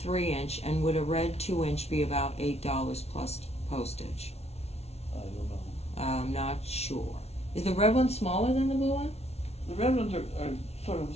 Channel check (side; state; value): right; late; 0.31 ms